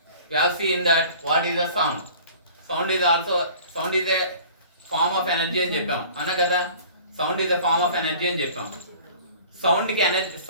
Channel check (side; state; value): both; inverted; correlation -0.47